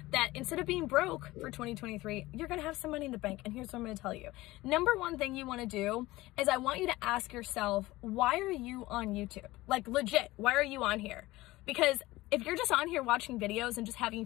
that instead of being broke for 2023, you're gonna have some money in the bank. And here's what I'm gonna tell you. Number one thing you wanna do is I want you to ask yourself, why are you on YouTube? Like legit, why are you on here? Because if you're just on here watching videos and just having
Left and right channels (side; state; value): right; quieter; 18.7 dB